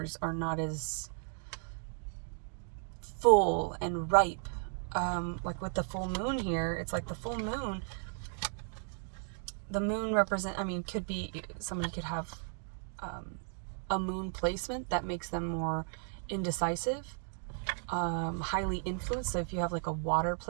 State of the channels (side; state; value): left; silent; 54 dB below the other